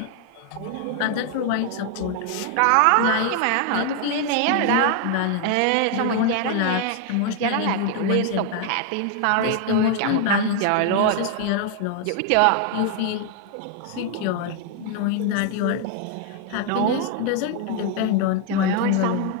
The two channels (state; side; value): different; both; correlation 0.00